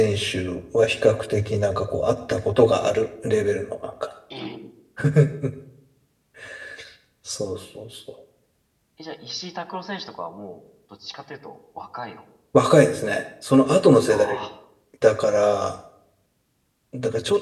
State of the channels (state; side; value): identical; both; correlation 1.00